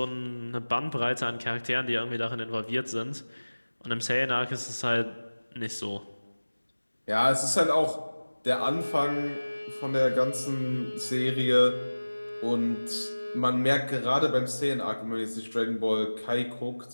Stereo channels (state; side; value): inverted; both; correlation -1.00